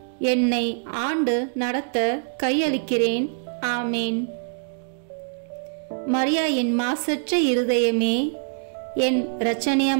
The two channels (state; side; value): silent; left; digital silence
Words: என்னை ஆண்டு நடத்த கையளிக்கிறேன். ஆமேன். மரியாயின் மாசற்ற இருதயமே, என்